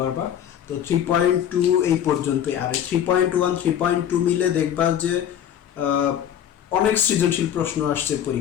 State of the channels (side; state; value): right; quieter; 9.9 dB